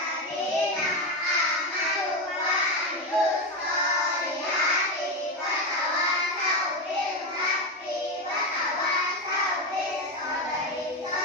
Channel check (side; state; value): both; normal; correlation 0.13